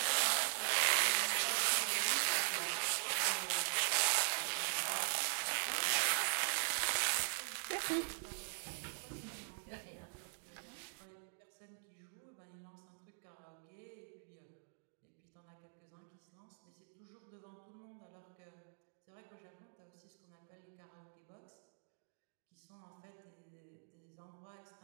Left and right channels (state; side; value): silent; left; digital silence